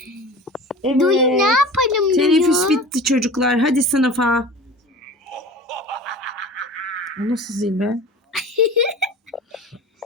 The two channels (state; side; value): normal; both; correlation 0.37